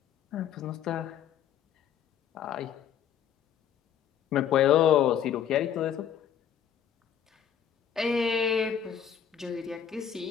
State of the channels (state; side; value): quieter; right; 8.9 dB